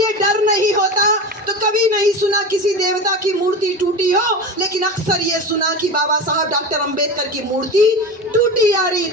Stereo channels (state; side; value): normal; both; correlation 0.27